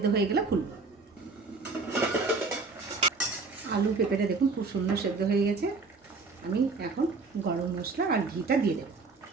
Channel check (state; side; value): quieter; left; 4.1 dB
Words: হয়ে গেলে খুলবো। আলু পেঁপেটা দেখুন খুব সুন্দর সেদ্ধ হয়ে গেছে। আমি এখন গরম মশলা আর ঘিটা দিয়ে দেবো।